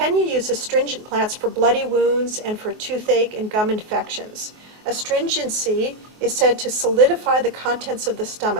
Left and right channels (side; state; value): left; late; 24 ms